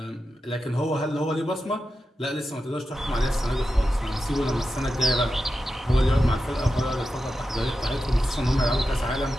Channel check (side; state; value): both; normal; correlation 0.90